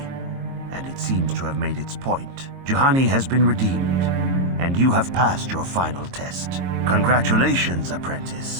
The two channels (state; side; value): late; left; 22 ms